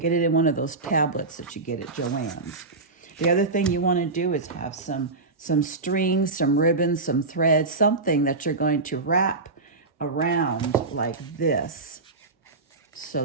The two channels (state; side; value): quieter; left; 3.6 dB